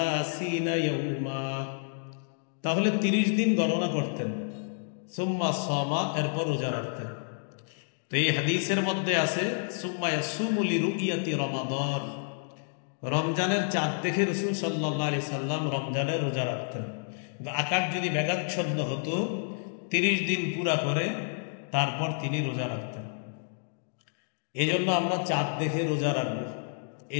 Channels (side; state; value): right; silent; digital silence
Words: ইয়াউমা, তাহলে 30 দিন গণনা করতেন। সুম্মা সামা, এরপর রোজা রাখতেন। তো এই হাদিসের মধ্যে আছে সুম্মা ইয়াসুমু লিরুইয়াতি রমাদান, রমজানের চাঁদ দেখে রাসূল সাল্লাল্লাহু আলাইহি সাল্লাম রমজানের রোজা রাখতেন। আকাশ যদি মেঘাচ্ছন্ন হতো 30 দিন পুরা করে তারপর তিনি রোজা রাখতেন। এই জন্য আমরা চাঁদ দেখে রোজা রাখবো,